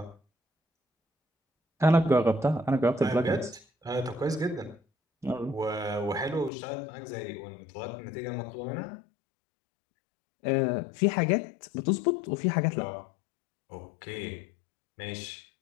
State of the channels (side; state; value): right; drops out; at 6.5 s